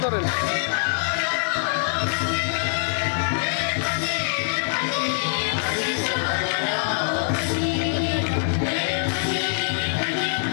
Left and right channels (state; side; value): silent; right; 55 dB below the other